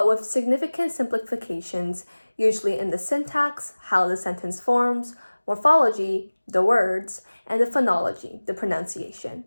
with significant simplifications, usually in the syntax, how the sentence forms, morphology, the words, and the phonology, the pronunciation.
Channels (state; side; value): inverted; both; correlation -1.00